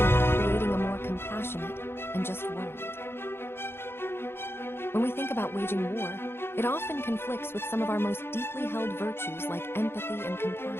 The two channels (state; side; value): late; right; 0.11 ms